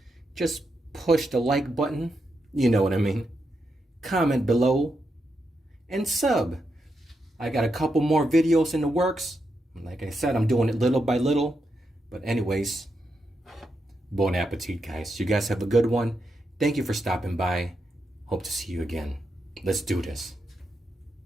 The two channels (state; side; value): normal; both; correlation 0.84